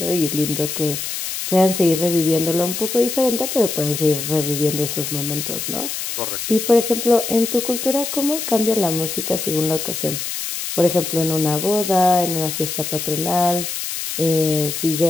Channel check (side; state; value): left; noise; hiss, 5 dB below the sound